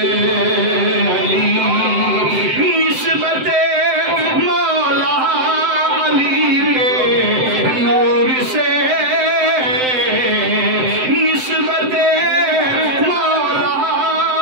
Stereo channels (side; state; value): left; late; 7.8 ms